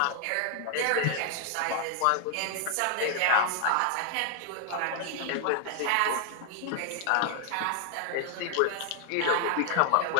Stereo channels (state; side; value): different; both; correlation 0.00